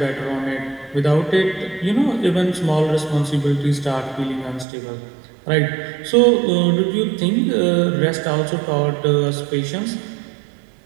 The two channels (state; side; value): drops out; left; at 4.7 s